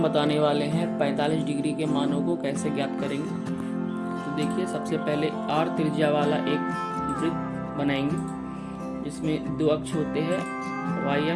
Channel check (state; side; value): identical; both; correlation 1.00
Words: बताने वाले हैं 45 डिग्री के मानों को कैसे ज्ञात करेंगे। तो देखिए, सबसे पहले r त्रिज्या वाला एक वृत्त बनाएंगे जिसमें 2 अक्ष होते हैं, y